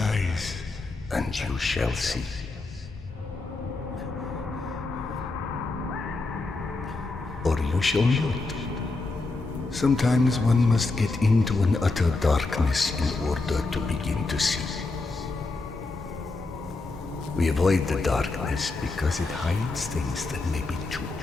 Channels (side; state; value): right; quieter; 3.5 dB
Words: and you shall see. Or you shall not. Sometimes one must get into an utter darkness in order to begin to see. We avoid the darkness because it hides things that may be too